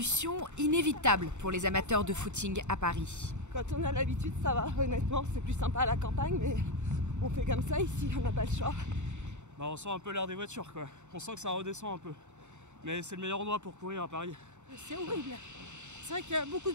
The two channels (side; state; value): left; late; 0.84 ms